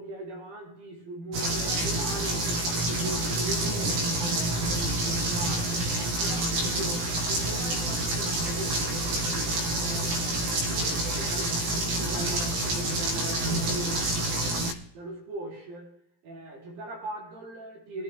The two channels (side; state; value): left; late; 18 ms